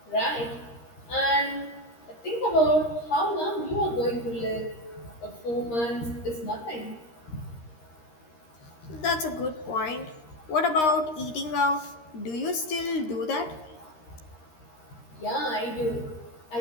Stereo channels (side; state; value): right; late; 13 ms